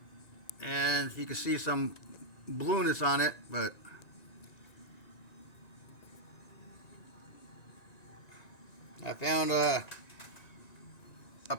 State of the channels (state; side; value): late; right; 1.9 ms